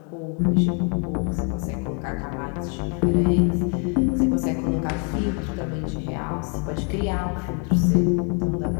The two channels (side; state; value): right; quieter; 38.8 dB